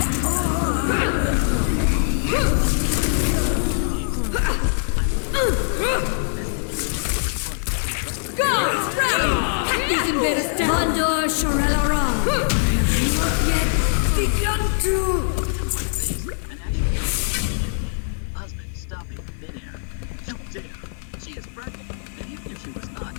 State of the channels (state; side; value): silent; right; digital silence